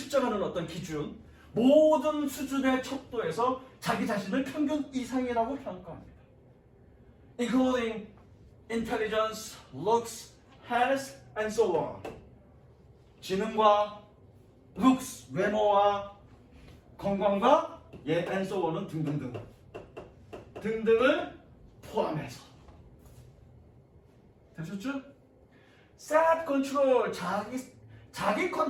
어떤 기준, 모든 수준의 척도에서 자기 자신을 평균 이상이라고 평가합니다. Including intelligence, looks, health, and so on. 지능과 looks, 외모와 건강과 and so on은 등등을 포함해서. 되셨죠? self control, 자기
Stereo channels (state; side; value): identical; both; correlation 1.00